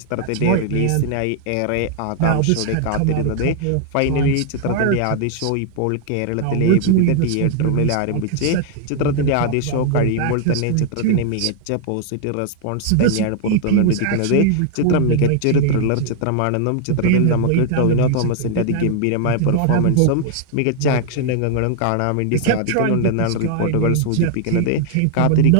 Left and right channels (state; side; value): different; both; correlation 0.00